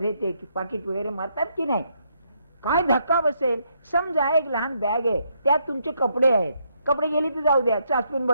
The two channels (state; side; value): inverted; both; correlation -0.74